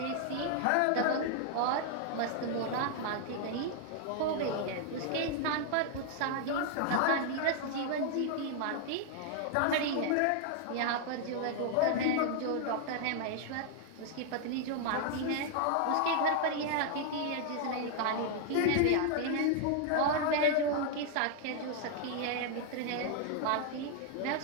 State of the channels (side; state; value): both; different; correlation 0.00